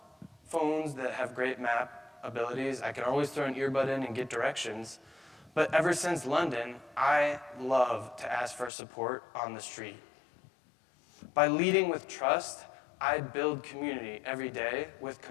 phones that have great map abilities. I can always throw an earbud in and get directions. But ever since London, I love to ask for support on the street. By leading with trust, I build community every day with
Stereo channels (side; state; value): right; drops out; at 8.7 s